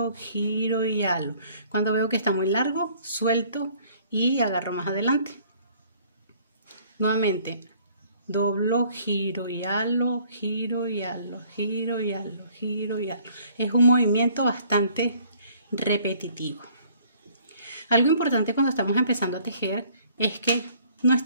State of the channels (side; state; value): both; inverted; correlation -0.58